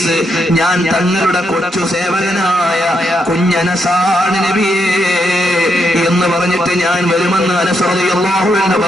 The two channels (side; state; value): both; normal; correlation 0.79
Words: ഞാൻ തങ്ങളുടെ കൊച്ചു സേവകനായ കുഞ്ഞനസാണ് നബിയേ എന്ന് പറഞ്ഞിട്ട് ഞാൻ വരുമെന്ന് അനസ് റളിയല്ലാഹു അൻഹു